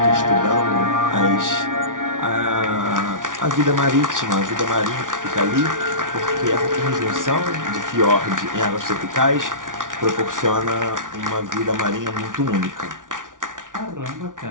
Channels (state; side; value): late; left; 0.88 ms